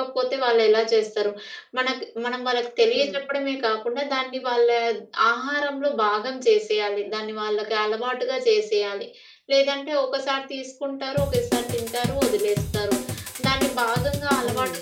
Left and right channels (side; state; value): both; identical; correlation 1.00